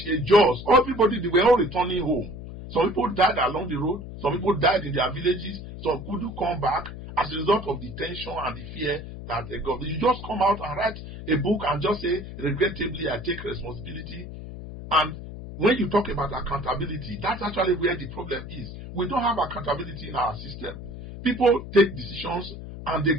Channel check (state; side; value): noise; left; hum, 11 dB below the sound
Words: Jaws, everybody, they were all returning home. Some people died along the road. Some people died in their villages. Some couldn't come back as a result of the tension and the fear that they got. You just come out and write a book and just say, regrettably, I take responsibility. And when you talk about accountability, that's actually where the problem is. We don't have accountability in our system. People take decisions and they